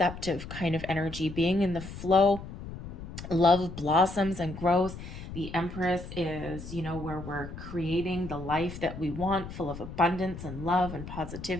kind of energy, being in the flow. Love blossoms and grows. The Empress is, where we're creating the life that we want, full of abundance and love and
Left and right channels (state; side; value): noise; left; rumble, 11 dB below the sound